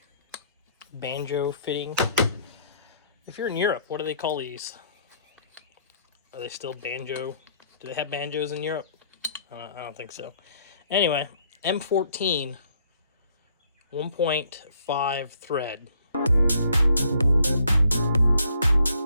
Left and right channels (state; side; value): inverted; both; correlation -0.65